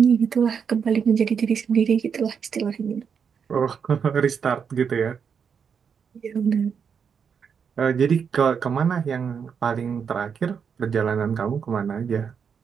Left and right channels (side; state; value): left; quieter; 6.7 dB